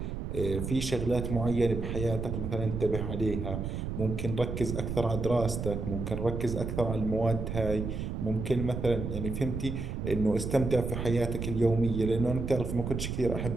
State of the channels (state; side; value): noise; right; rumble, 4 dB below the sound